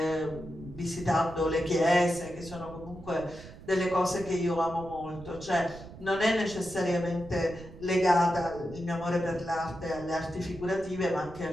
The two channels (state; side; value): noise; right; rumble, 16 dB below the sound